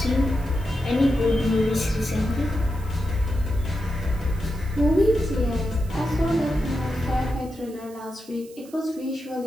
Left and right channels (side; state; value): right; noise; hiss, 23 dB below the sound